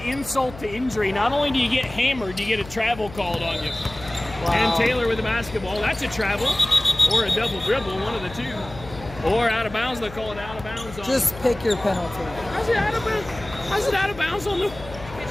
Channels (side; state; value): left; noise; hum, 15 dB below the sound